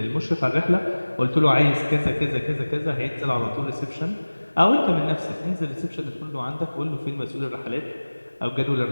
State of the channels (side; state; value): both; inverted; correlation -1.00